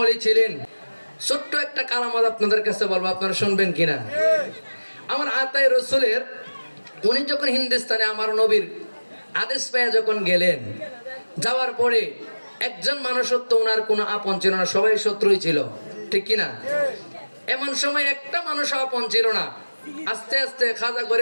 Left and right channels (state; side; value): inverted; both; correlation -1.00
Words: ওলি ছিলেন। ছোট্ট একটা কারামত আপনাদের কাছে বলবো, আপনারা শুনবেন কিনা। আমার আতায়ে রসুলের উনি যখন হিন্দুস্তানে আমার নবীর আদেশ পেয়ে যখন গেলেন, যাওয়ার পরে একজন মানুষ তো ওনার কোনো আপন ছিল না, সবাই শত্রুই ছিল, ঠিক কিনা। এমন সময় একটা মানুষ আপন ছিল না। আস্তে আস্তে খাজা